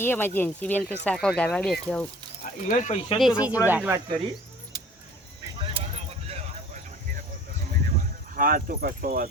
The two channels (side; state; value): both; normal; correlation 0.48